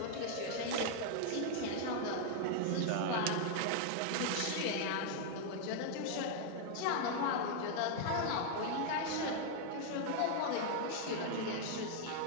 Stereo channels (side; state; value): both; different; correlation 0.00